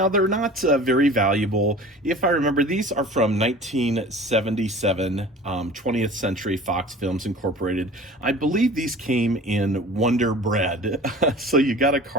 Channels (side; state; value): both; normal; correlation 0.42